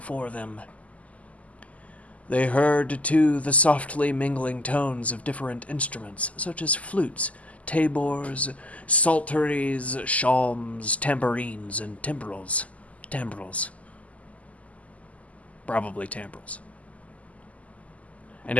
them. They heard, too, the softly mingling tones of different instruments, such as flutes, tabors, psalteries, shawms, tambourines, and timbrels. Probably timbrels. And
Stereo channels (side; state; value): right; late; 0.070 ms